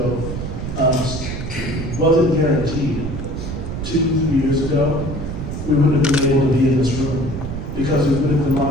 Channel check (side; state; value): right; noise; rumble, 6 dB below the sound